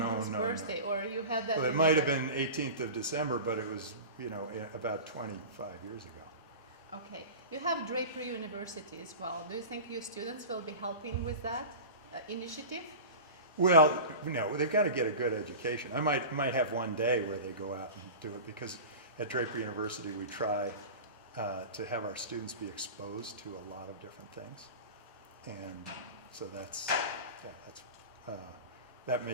no, no, birthday, or you had that? Well, it in might have the- been 18th of December, but it was, about 25 years ago. Okay. You have Draper University as well. Do you think your students will be helping with that initiative? Well, no, they've got to get a good education. I might have one day where they go out and do it, because at Draper University we try to have our students be exposed to a lot of different things, and so that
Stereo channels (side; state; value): both; inverted; correlation -0.32